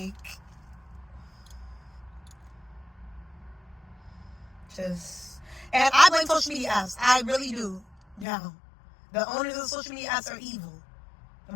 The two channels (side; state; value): right; drops out; at 8.2 s